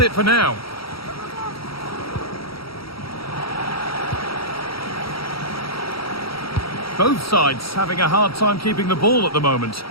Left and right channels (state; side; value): late; right; 0.75 ms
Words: it for now. Both sides having a hard time keeping the ball at the moment.